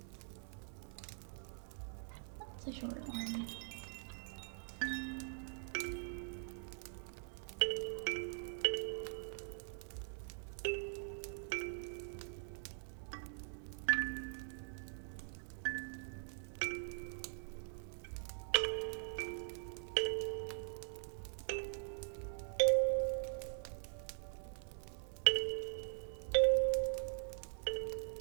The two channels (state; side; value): silent; left; digital silence